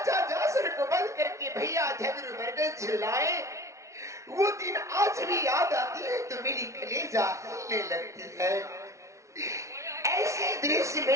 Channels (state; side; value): late; left; 0.14 ms